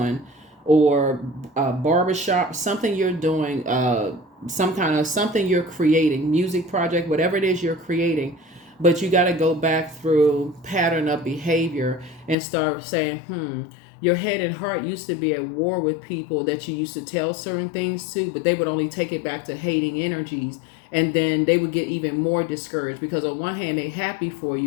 or a barbershop, something you're doing, something you're creating, music project, whatever it is you're creating. But you got to go back through pattern of behavior and start saying, your head and heart used to be at war with people that you used to tell certain things to, but they would only take it back to hating energies. And then they would get even more discouraged, because on one hand, they're happy for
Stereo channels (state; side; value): drops out; right; at 12.4 s